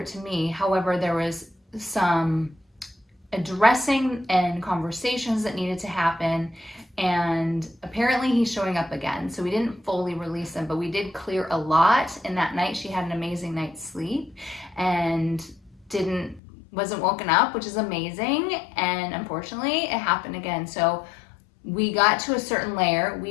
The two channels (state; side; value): drops out; right; at 16.4 s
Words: to me. However, there was some addressing and conversations that needed to happen. And apparently he's showing up again. So we didn't fully release him, but we did clear a lot. And that night she had an amazing night's sleep and wasn't woken up, which is amazing. And unfortunately it happened again. So we got to a certain layer,